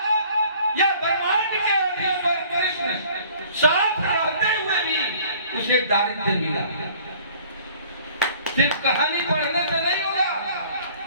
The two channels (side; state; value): both; inverted; correlation -0.53